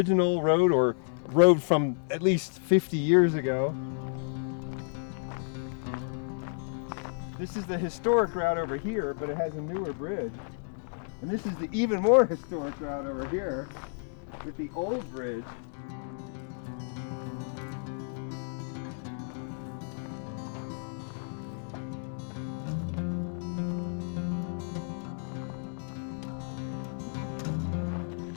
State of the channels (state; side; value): silent; right; digital silence